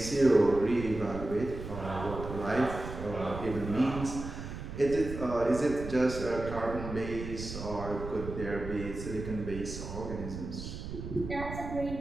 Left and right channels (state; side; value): noise; right; rumble, 8 dB below the sound